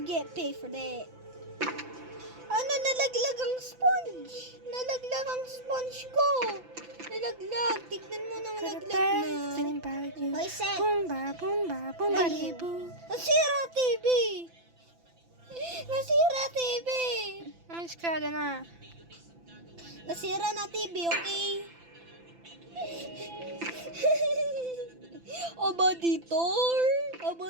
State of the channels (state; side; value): late; left; 5.9 ms